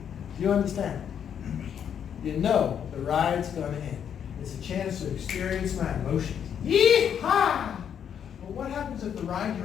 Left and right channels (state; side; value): quieter; right; 8.5 dB